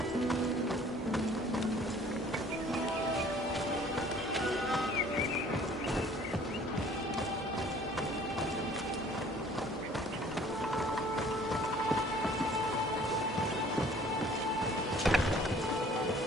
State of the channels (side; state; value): both; normal; correlation 0.53